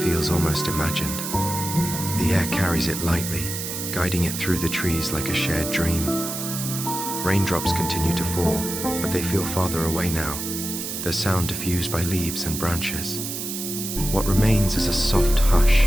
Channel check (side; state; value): right; noise; hiss, 5 dB below the sound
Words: feels almost imagined. The air carries it lightly, guiding it through the trees like a shared dream. Raindrops continue to fall, but they feel farther away now, their sound diffused by leaves and branches. What remains is a soft hush,